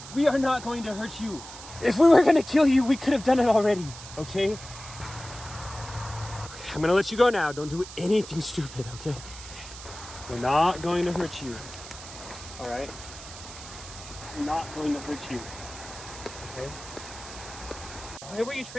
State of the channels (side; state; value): right; noise; hiss, 14 dB below the sound